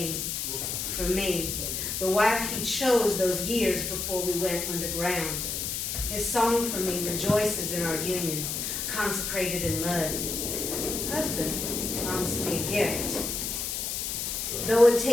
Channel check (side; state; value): left; noise; hiss, 2 dB below the sound